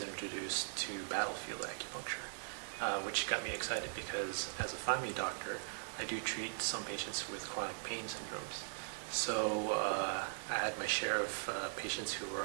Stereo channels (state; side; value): silent; left; digital silence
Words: introduced to battlefield acupuncture, which got me excited because as a family doctor, I do treat some patients with chronic pain syndromes. So I had my share of patients who were